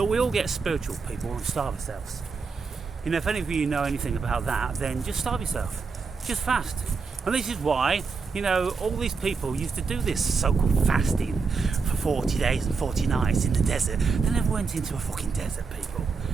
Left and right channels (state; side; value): quieter; left; 4.9 dB